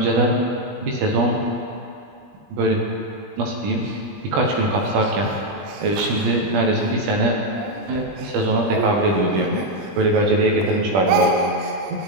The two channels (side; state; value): left; late; 21 ms